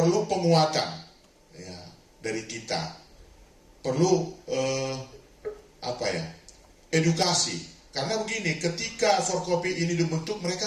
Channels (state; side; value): identical; both; correlation 1.00